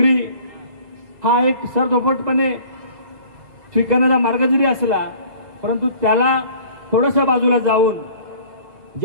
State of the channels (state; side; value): late; left; 2.0 ms